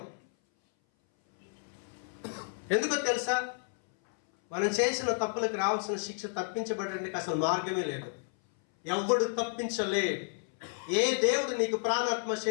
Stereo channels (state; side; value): silent; right; 57 dB below the other